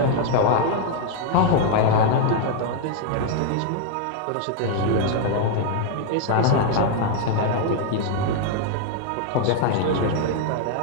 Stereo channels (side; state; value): both; different; correlation 0.00